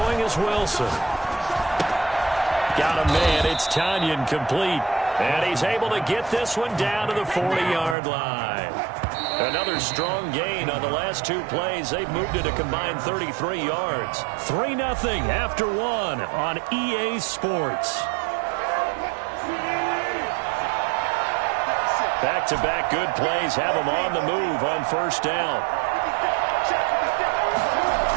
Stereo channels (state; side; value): drops out; left; at 8.0 s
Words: is Wilson. Got a man. It's Tanyan complete. And he's able to get this one down to the 40-yard line. Another strong gain on the last 2 plays. They've moved it a combined 33 yards. 3-0 after 1 on EA Sports. Back-to-back good plays have them on the move on 1st down.